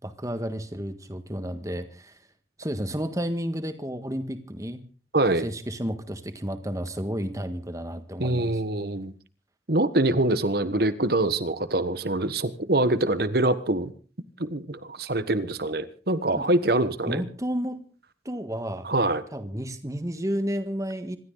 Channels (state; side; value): normal; both; correlation 0.33